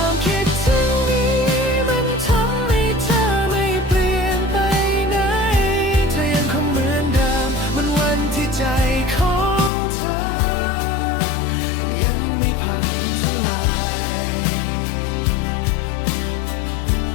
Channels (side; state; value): right; drops out; at 9.7 s